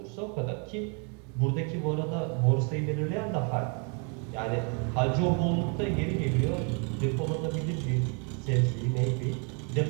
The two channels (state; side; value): quieter; left; 37.2 dB